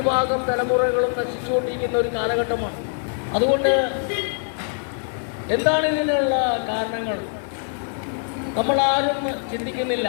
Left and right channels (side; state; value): right; silent; 63 dB below the other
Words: തലമുറകളും നശിച്ചുകൊണ്ടിരിക്കുന്ന ഒരു കാലഘട്ടമാണ്. അതുകൊണ്ട് എന്താണ് ഇതിനുള്ള കാരണങ്ങൾ നമ്മൾ ആരും ചിന്തിക്കുന്നില്ല.